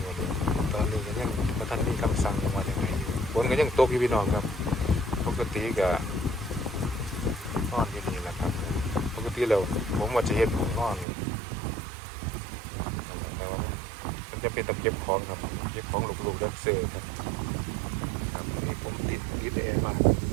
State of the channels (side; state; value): left; drops out; at 11.1 s